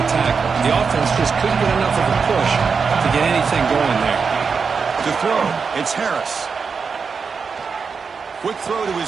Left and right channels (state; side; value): quieter; left; 5.4 dB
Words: tackle. The offense just couldn't get enough of a push to get anything going there. To throw, it's Harris. Quick throw to